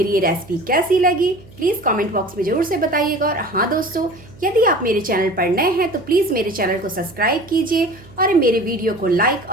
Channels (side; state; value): right; noise; hum, 22 dB below the sound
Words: ये रेसिपी कैसी लगी प्लीज़ कमेंट बॉक्स में ज़रूर से बताइएगा। और हाँ दोस्तों, यदि आप मेरे चैनल पर नए हैं तो प्लीज़ मेरे चैनल को सब्सक्राइब कीजिए और मेरे वीडियो को लाइक